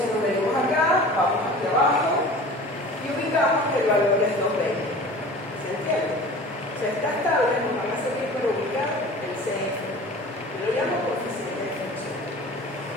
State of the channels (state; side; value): normal; both; correlation 0.40